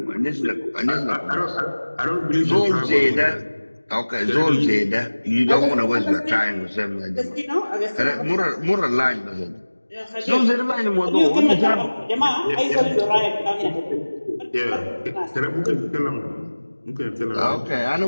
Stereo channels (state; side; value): inverted; both; correlation -1.00